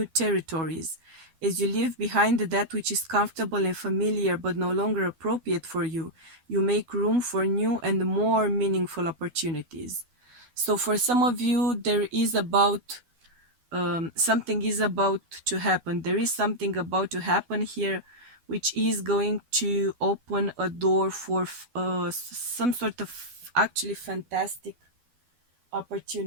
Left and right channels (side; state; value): left; late; 12 ms